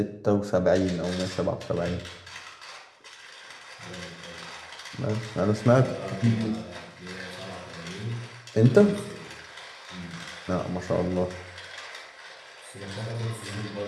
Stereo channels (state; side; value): identical; both; correlation 1.00